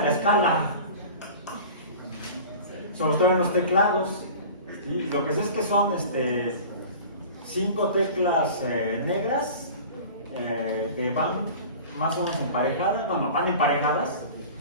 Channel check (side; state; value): both; inverted; correlation -0.39